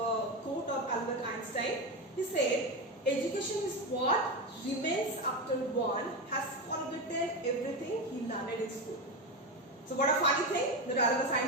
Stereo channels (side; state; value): both; normal; correlation 0.15